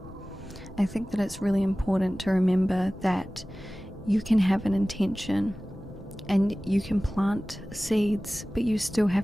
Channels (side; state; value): both; normal; correlation 0.97